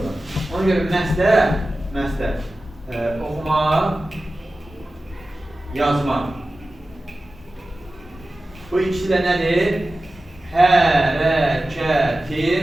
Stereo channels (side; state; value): both; normal; correlation 0.95